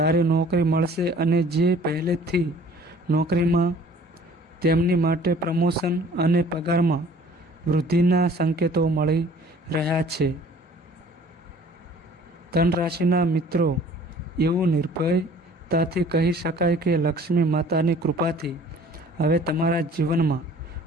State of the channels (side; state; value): both; normal; correlation 0.52